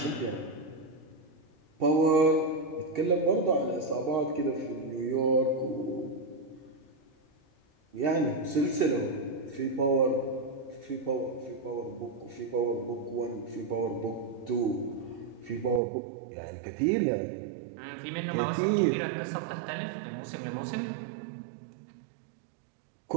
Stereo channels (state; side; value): drops out; left; at 15.8 s